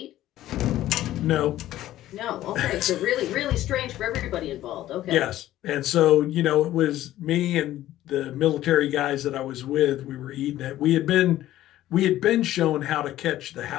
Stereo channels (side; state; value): right; quieter; 14.1 dB